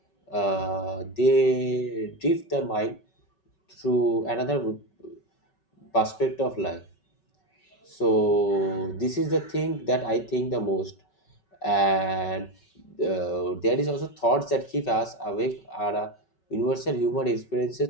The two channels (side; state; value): right; late; 5.3 ms